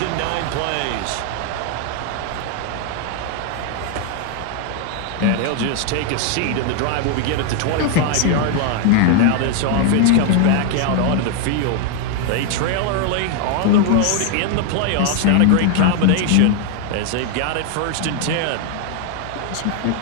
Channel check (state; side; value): different; both; correlation 0.00